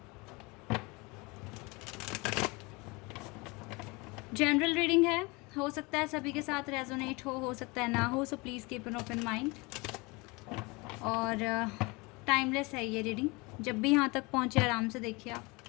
जनरल रीडिंग है, हो सकता है सभी के साथ रेजोनेट हो सकता है ना हो, so please keep an open mind. और टाइमलेस है ये रीडिंग, जब भी यहाँ तक पहुँचे आराम से देखिए आप।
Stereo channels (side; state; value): right; quieter; 26.0 dB